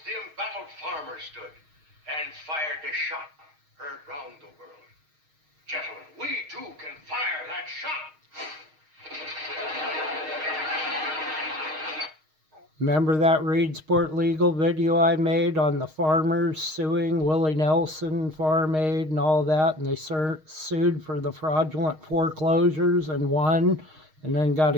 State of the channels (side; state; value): left; late; 6.4 ms